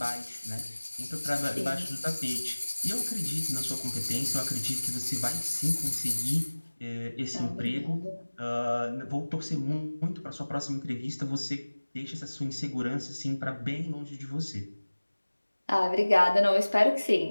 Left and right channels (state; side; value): inverted; both; correlation -1.00